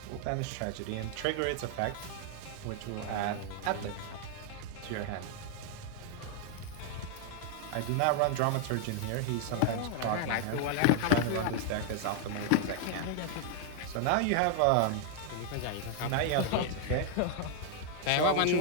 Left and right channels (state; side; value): different; both; correlation -0.01